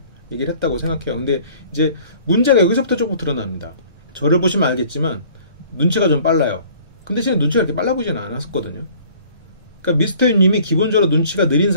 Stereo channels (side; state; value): both; inverted; correlation -0.53